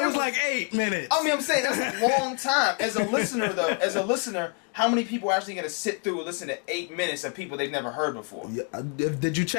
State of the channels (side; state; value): right; quieter; 38.8 dB